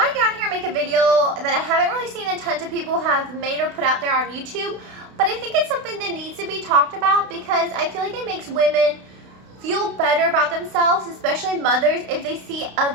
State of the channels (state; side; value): late; left; 32 ms